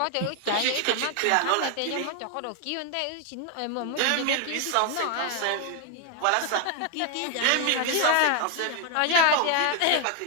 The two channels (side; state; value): both; different; correlation 0.01